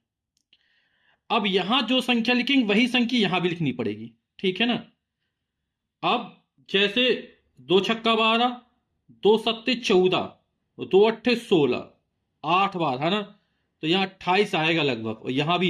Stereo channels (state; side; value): identical; both; correlation 1.00